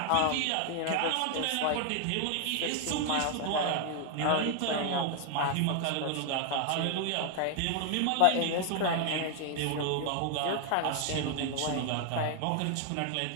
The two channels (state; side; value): different; both; correlation 0.00